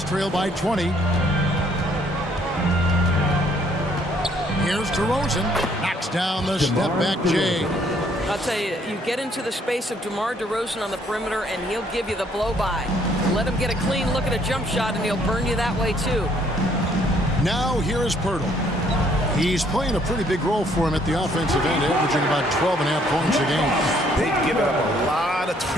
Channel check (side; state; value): both; normal; correlation 0.65